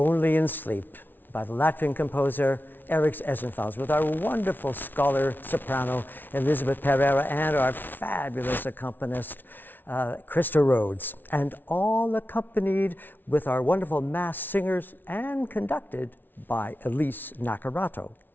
in Sleep by the Latvian composer Eriks Esenthals, with our wonderful scholar soprano Elizabeth Pereira and our fabulous accompanist Krista Rhodes, and all accompanied with our wonderful mass singers and conducted by Elise Nakarato.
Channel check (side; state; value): right; late; 0.092 ms